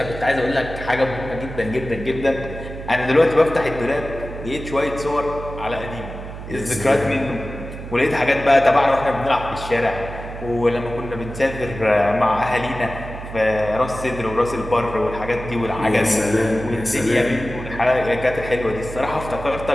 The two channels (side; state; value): right; noise; hum, 11 dB below the sound